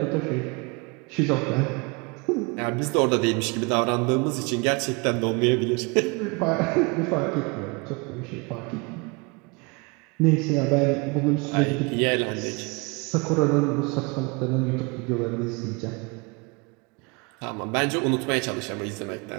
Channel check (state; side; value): quieter; left; 29.4 dB